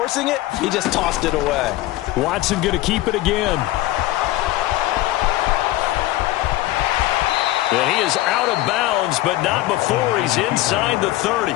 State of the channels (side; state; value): right; quieter; 16.7 dB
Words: it, he just tossed it away. Watson going to keep it again. And he is out of bounds, but not before he's inside the 30.